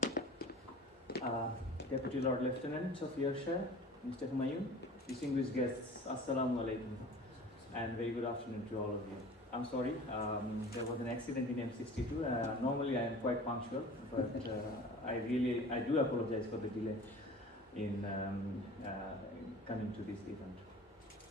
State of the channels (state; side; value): normal; both; correlation 0.41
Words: Deputy Lord Lieutenant of Yorkshire, Mr. Humayun, distinguished guests, Assalamu alaikum, and very good afternoon to all of you. I'm sorry, there was an accident in M62. Normally I am quite punctual, but I do apologize for the delay in coming to this event.